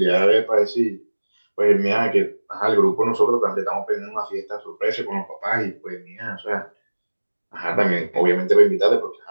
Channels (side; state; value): both; inverted; correlation -1.00